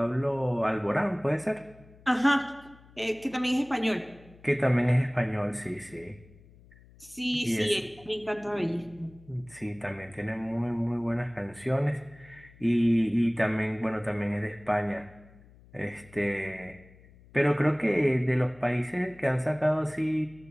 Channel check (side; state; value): left; noise; hum, 25 dB below the sound